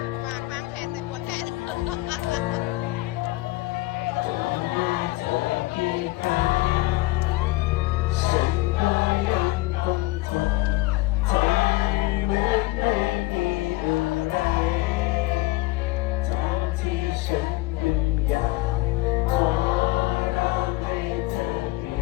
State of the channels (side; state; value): right; quieter; 19.1 dB